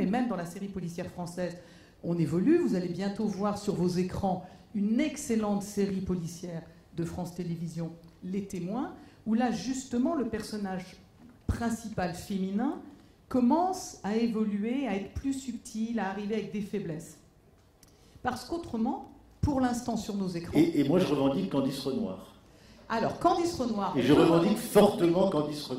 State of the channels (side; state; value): both; identical; correlation 1.00